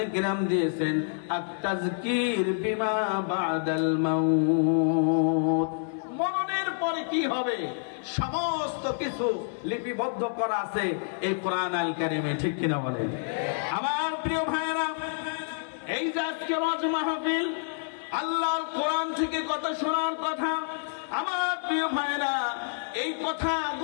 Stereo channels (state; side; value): silent; right; 59 dB below the other